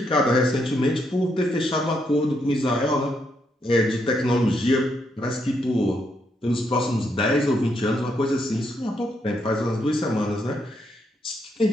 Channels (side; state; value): both; normal; correlation 0.77